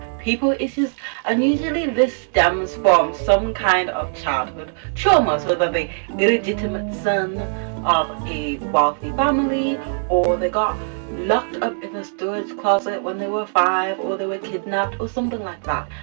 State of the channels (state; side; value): silent; left; digital silence